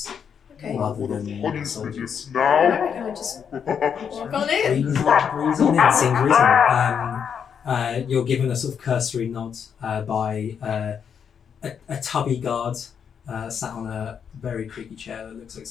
rather than soldiers. Alright, can I just walk on in? Breeze on in. Seems reasonable. You're given a sort of cursory nod by a tubby guard sat on a very creaky chair that looks like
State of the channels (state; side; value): quieter; right; 7.4 dB